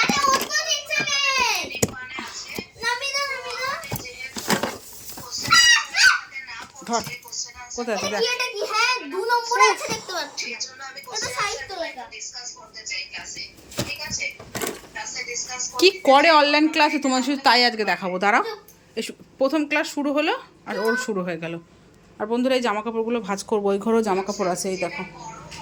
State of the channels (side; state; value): both; identical; correlation 1.00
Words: ওটা নিচে নেই। নামি দাও। ধর কোথায় আছে দেখ। এটা কি? হ্যাঁ 2 নম্বরে আছে, দেখতে পাচ্ছি। এটা সাহিত্য লেখা। কি করে অনলাইন ক্লাসে তোমার শুধু তাই আজকে দেখাবো, দাঁড়াও। প্রথম ক্লাস শুরু হলো আর ওর শুরু হয়ে গেল। আর বন্ধুরা এই জামা কাপড়গুলো ভাঁজ করবো, ওই ঘরেও জামা কাপড় আছে, এই